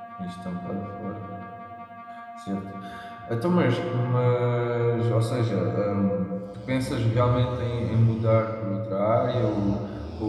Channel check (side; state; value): both; identical; correlation 1.00